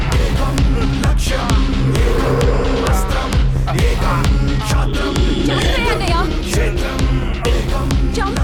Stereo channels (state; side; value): identical; both; correlation 1.00